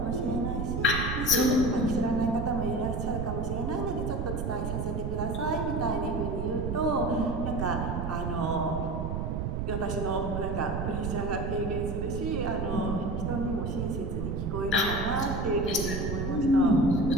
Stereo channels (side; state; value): right; noise; rumble, 1 dB below the sound